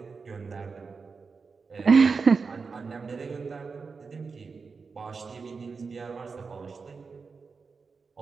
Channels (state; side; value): quieter; left; 4.9 dB